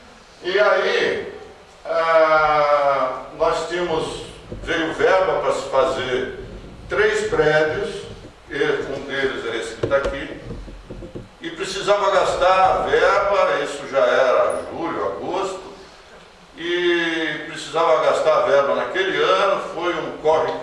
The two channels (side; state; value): both; identical; correlation 1.00